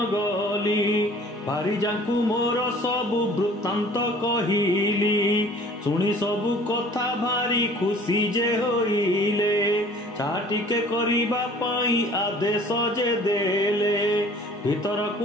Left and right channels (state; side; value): normal; both; correlation 0.50